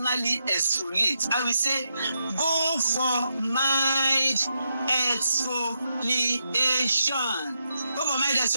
exfoliate, I will say go for mild exfoliation. Go for mild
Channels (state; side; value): inverted; both; correlation -0.84